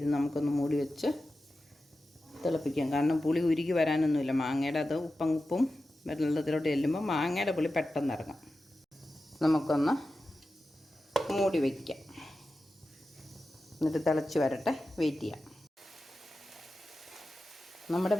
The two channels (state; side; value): normal; both; correlation 0.93